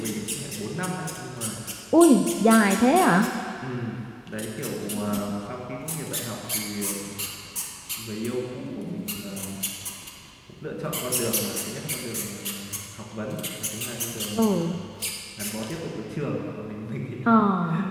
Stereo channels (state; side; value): identical; both; correlation 1.00